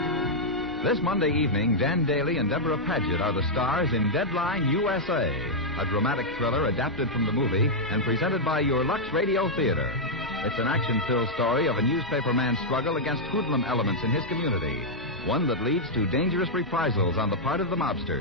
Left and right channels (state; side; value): normal; both; correlation -0.05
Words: This Monday evening, Dan Daly and Deborah Paget are the stars in Deadline USA, a dramatic thriller adapted from the movie and presented by your Lux Radio Theater. It's an action-filled story of a newspaper man's struggle against hoodlum elements in his community, one that leads to dangerous reprisals on the part of the